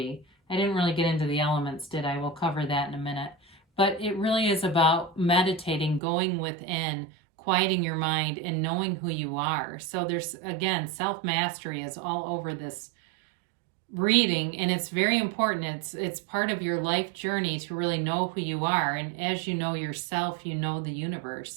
I didn't really get into the elements, did I? We'll cover that in a minute. But it really is about meditating, going within, quieting your mind, and knowing who you are. So there's, again, self-mastery is all over this reading, and it's very important. It's part of your life journey to really know who you are, and as you know yourself, you know the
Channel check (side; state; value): left; drops out; at 6.0 s